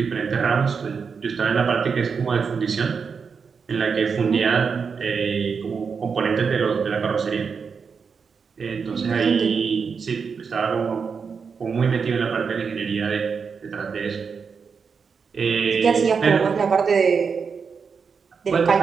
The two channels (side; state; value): left; quieter; 5.7 dB